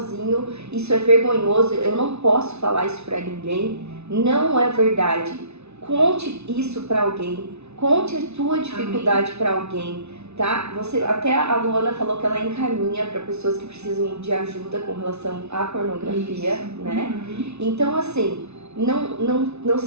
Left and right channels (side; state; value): left; late; 0.81 ms